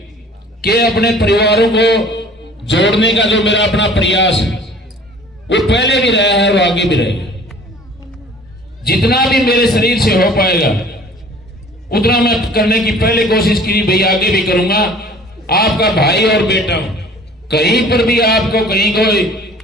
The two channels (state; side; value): normal; both; correlation 0.49